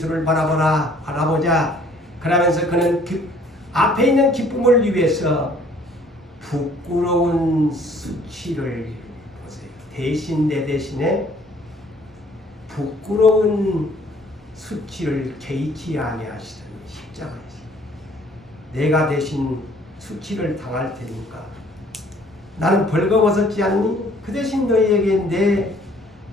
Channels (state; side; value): normal; both; correlation 0.58